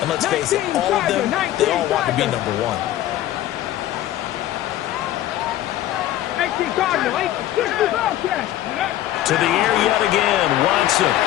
And let's face it, all of them, they all want to be number 1. To the air yet again, Watson.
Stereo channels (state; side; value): quieter; right; 13.4 dB